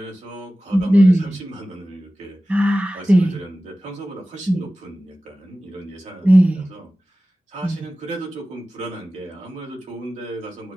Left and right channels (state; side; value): normal; both; correlation 0.96